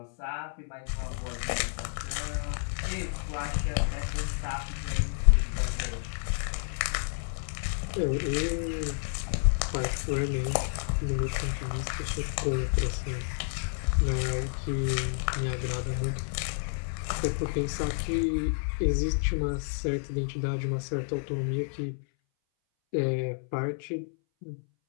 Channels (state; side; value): silent; right; 58 dB below the other